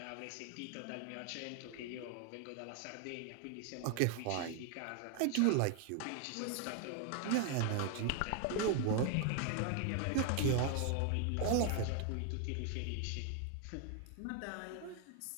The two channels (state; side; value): different; both; correlation 0.00